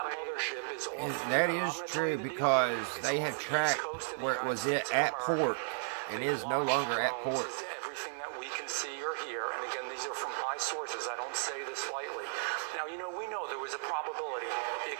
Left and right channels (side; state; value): left; silent; digital silence